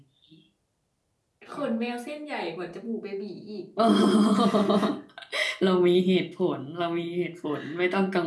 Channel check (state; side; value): identical; both; correlation 1.00